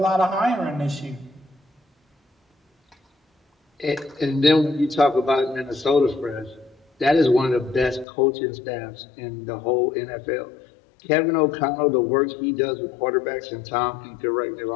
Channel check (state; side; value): drops out; right; at 8.1 s